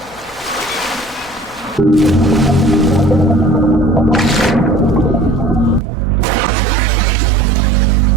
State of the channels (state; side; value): drops out; left; at 5.8 s